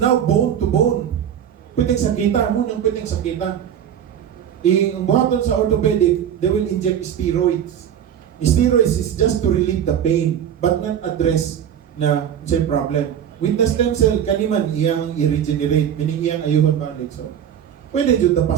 now bone to bone. Pwedeng sakita. Munang pwedeng sakita. Ang buhaton sa orthopedic, they will inject steroids. Steroids is just to relieve the pain but not address na say problem. With the stem cell, kaniman iyang i-regenerate, meaning iyang ayuhon balik. So, pwede dito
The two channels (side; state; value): left; quieter; 9.3 dB